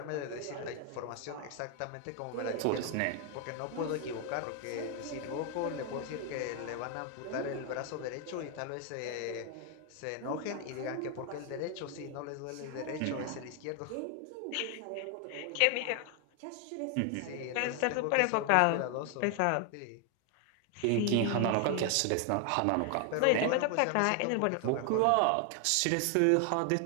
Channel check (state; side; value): different; both; correlation 0.00